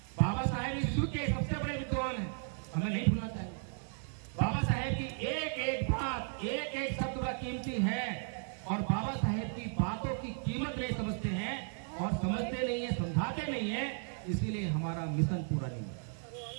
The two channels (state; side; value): silent; left; 54 dB below the other